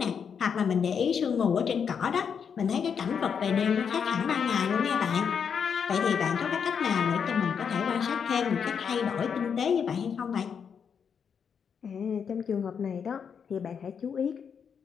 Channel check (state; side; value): quieter; right; 6.9 dB